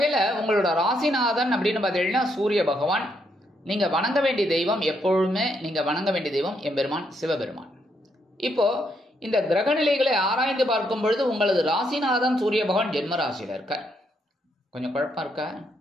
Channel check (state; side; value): normal; both; correlation 0.76